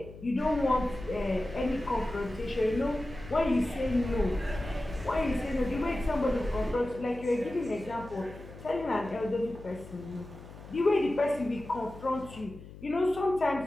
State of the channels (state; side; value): noise; left; hum, 16 dB below the sound